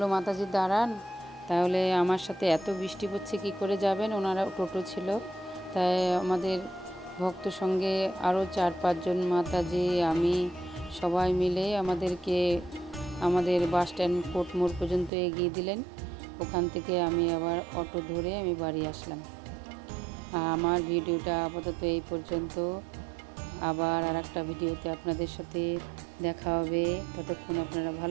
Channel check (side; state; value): left; drops out; at 15.1 s